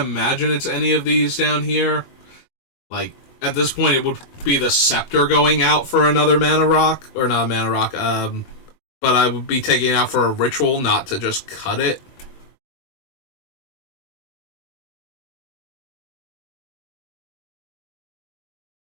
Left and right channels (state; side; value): late; right; 22 ms